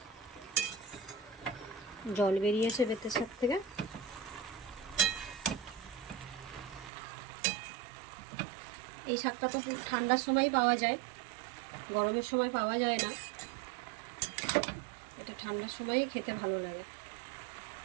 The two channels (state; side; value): drops out; left; at 6.9 s